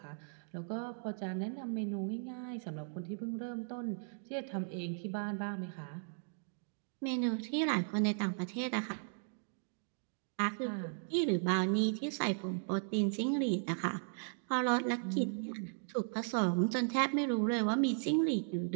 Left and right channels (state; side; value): silent; left; digital silence